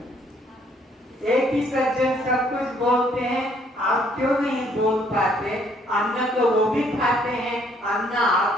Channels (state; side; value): normal; both; correlation 0.65